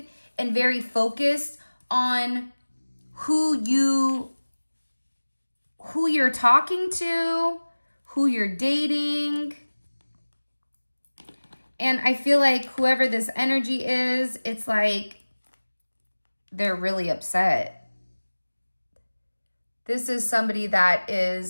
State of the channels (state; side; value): inverted; both; correlation -1.00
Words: and very focused on who you're talking to, who you're dating. And I feel like whoever this energy is, it's like they're really upset. This is somebody that